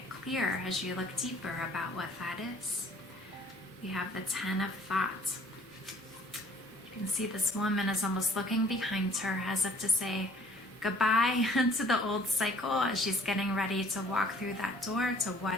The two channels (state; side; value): normal; both; correlation 0.57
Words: clear as you look deeper about what that is. We have the 10 of Thoughts. You can see this woman is almost looking behind her as if to say goodbye to the old cycle as she's getting ready to walk through that door to